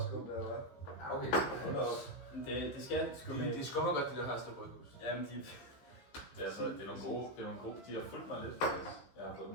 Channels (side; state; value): right; late; 15 ms